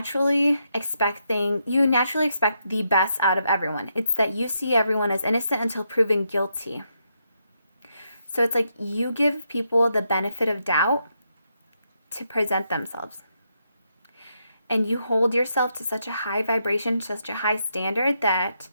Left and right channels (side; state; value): both; inverted; correlation -0.80